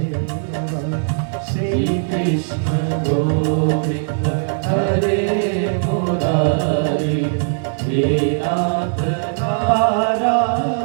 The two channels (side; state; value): left; silent; 67 dB below the other